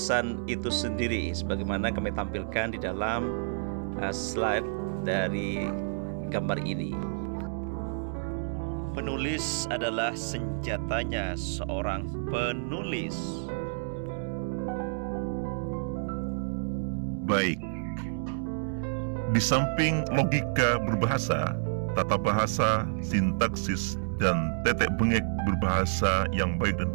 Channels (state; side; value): silent; left; digital silence